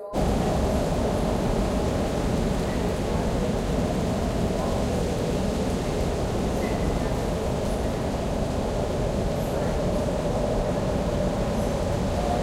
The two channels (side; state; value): both; identical; correlation 1.00